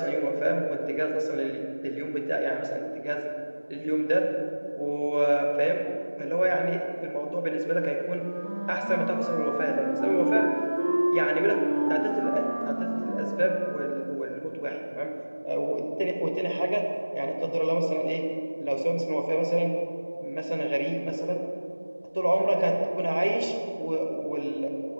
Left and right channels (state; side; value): inverted; both; correlation -1.00